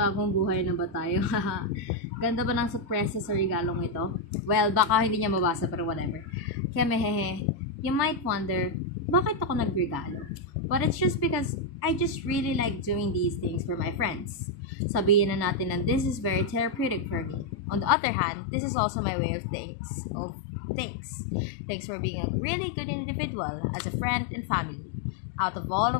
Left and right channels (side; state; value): right; drops out; at 17.9 s